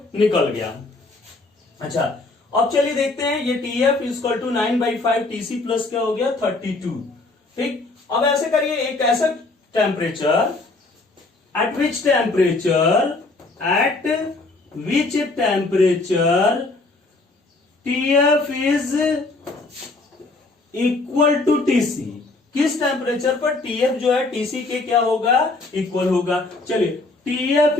निकल गया। अच्छा अब चलिए देखते हैं, ये T F equal to 9/5 T C plus क्या हो गया 32, ठीक। अब ऐसे करिए, एक ऐसा temperature, at which temperature TF is equal to TC, किस टेम्परेचर पर TF जो है TC के क्या होगा, इक्वल होगा। चलिए TF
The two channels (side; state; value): right; quieter; 3.3 dB